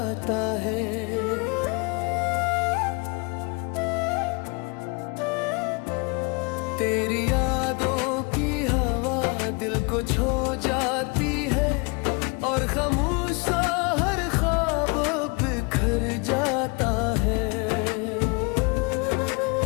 है। तेरी यादों की हवा दिल को छू जाती है, और खामोश सा हर ख्वाब बिखर जाता है।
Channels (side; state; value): right; quieter; 30.6 dB